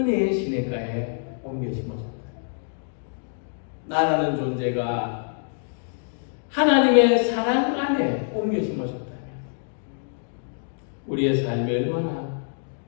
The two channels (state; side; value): silent; right; digital silence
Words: 시냇가에 옮겨 심어졌다. 나라는 존재가 하나님의 사랑 안에 옮겨 심어졌다면 우리의 삶이 얼마나